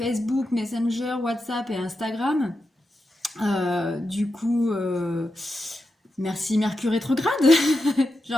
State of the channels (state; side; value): normal; both; correlation 0.88